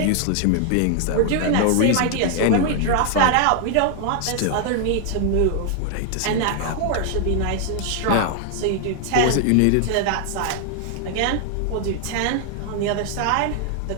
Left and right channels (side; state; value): both; different; correlation 0.00